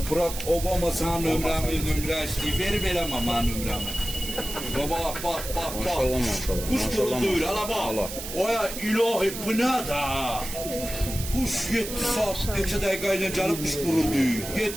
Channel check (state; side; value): noise; right; hiss, 8 dB below the sound